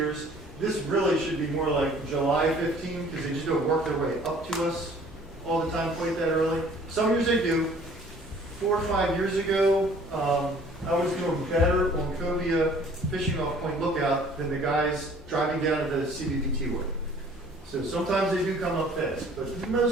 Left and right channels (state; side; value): normal; both; correlation 0.53